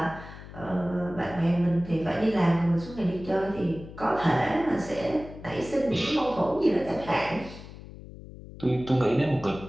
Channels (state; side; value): noise; left; hum, 15 dB below the sound